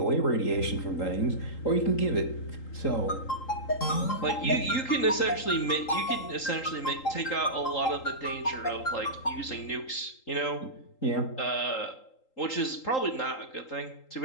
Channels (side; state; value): right; late; 3.8 ms